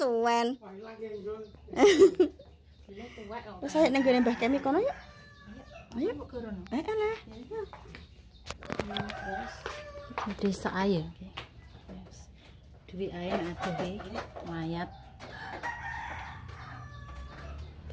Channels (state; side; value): identical; both; correlation 1.00